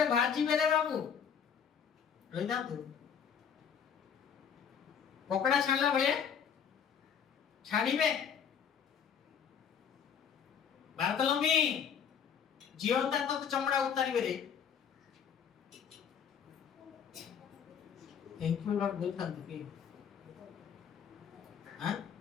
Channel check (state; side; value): quieter; right; 7.5 dB